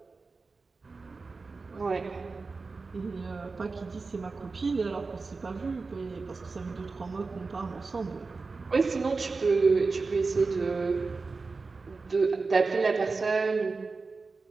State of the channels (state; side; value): quieter; left; 4.1 dB